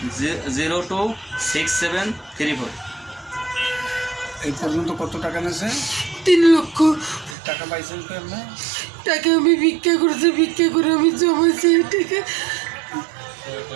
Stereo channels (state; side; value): drops out; left; at 7.4 s